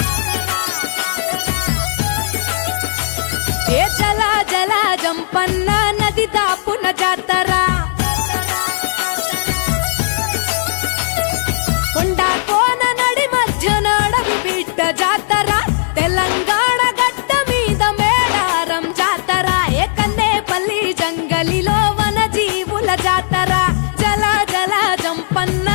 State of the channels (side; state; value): right; silent; digital silence